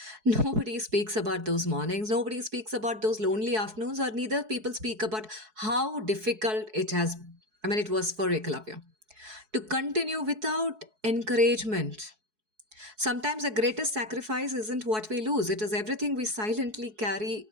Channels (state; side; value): late; left; 4.7 ms